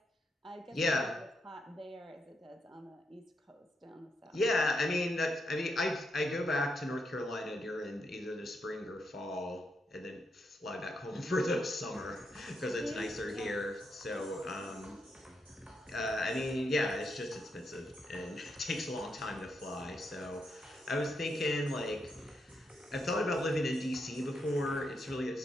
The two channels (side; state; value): both; normal; correlation 0.81